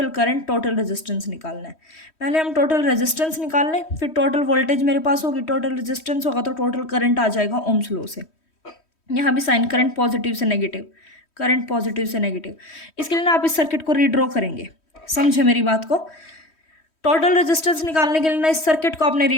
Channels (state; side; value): late; right; 3.1 ms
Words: करंट, टोटल रेजिस्टेंस निकालना है। पहले हम टोटल रेजिस्टेंस निकाल लें, फिर टोटल वोल्टेज मेरे पास होगी, टोटल रेजिस्टेंस होगा तो टोटल करंट आ जाएगा ओम्स लॉ से। यहाँ भी साइन करंट पॉजिटिव से नेगेटिव, करंट पॉजिटिव से नेगेटिव। इसके लिए ना आप इस सर्किट को रीड्रॉ करेंगे, समझे मेरी बात को। टोटल रेजिस्टेंस निकालने के लिए ना इस सर्किट को आपने